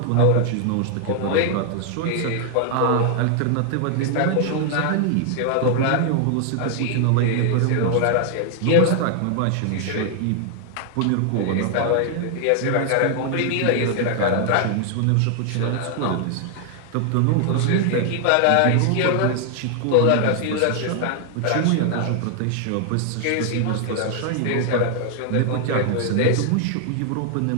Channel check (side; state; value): both; different; correlation 0.00